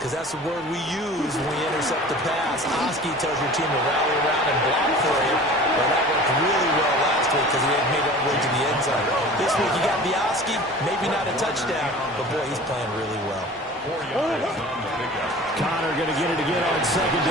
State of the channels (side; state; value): both; normal; correlation 0.41